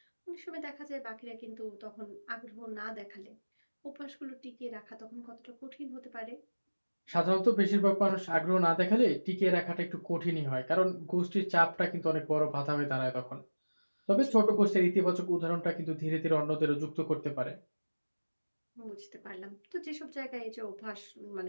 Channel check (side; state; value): both; inverted; correlation -1.00